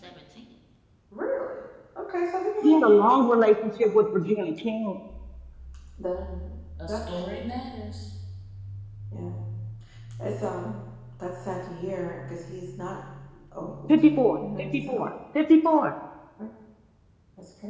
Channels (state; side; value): identical; both; correlation 1.00